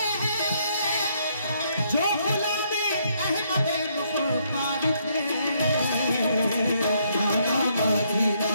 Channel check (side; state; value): both; inverted; correlation -0.71